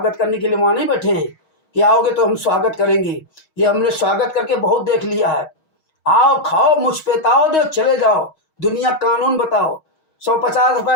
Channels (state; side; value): late; right; 6.3 ms